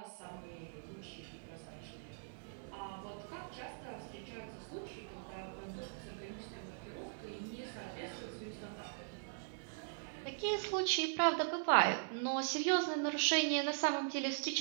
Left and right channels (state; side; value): silent; left; 51 dB below the other